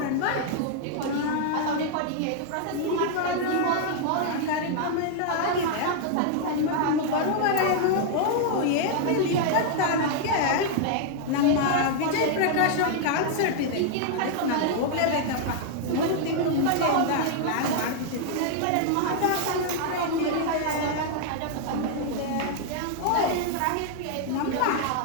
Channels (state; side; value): different; both; correlation -0.01